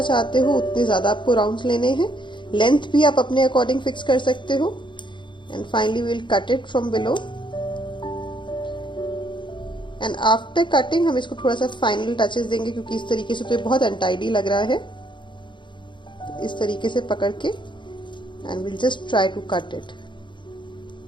चाहते हो उतने ज़्यादा आपको राउंड्स लेने हैं। लेंथ भी आप अपने अकॉर्डिंग फिक्स कर सकते हो। And finally we will cut it from below. And after cutting हम इसको थोड़ा सा फाइनल टचेस देंगे, क्योंकि इस तरीके से तो ये बहुत अनटाइडी लग रहा है। तो इस तरीके से पकड़ के and will just try to cut it.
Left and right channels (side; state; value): right; late; 0.23 ms